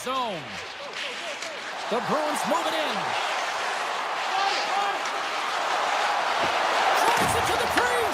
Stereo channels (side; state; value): both; identical; correlation 1.00